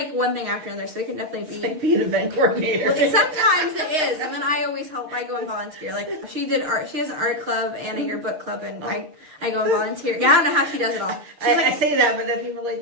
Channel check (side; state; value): left; late; 6.5 ms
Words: one thing after another. So it can definitely be like being an event coordinator. Well, sometimes it is, and then I always help. I go and volunteer. Like she did art. She has an art club and a yearbook club, and I go and volunteer. Yeah, I don't know how she does it all. I say that, but then people are